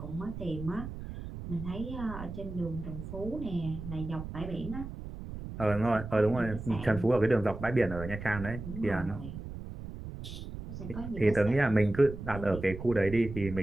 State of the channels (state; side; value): noise; right; rumble, 9 dB below the sound